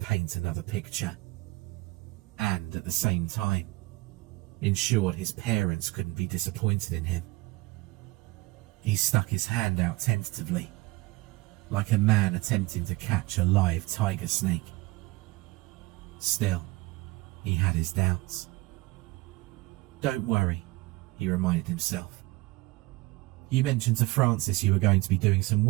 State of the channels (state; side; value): quieter; left; 21.4 dB